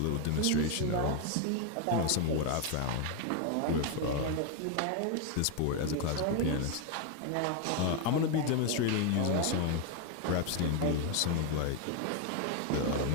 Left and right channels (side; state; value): both; different; correlation 0.01